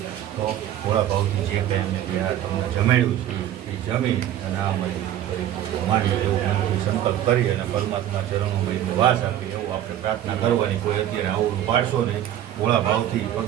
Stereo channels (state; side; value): quieter; left; 11.7 dB